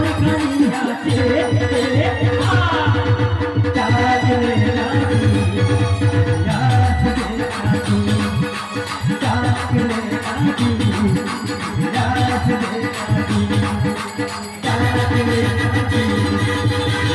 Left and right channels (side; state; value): both; identical; correlation 1.00